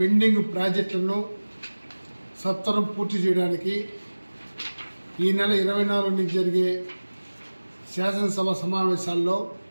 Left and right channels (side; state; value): both; inverted; correlation -1.00